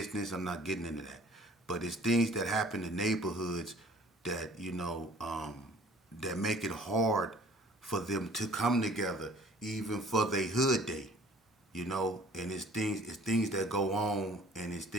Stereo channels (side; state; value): both; normal; correlation 0.52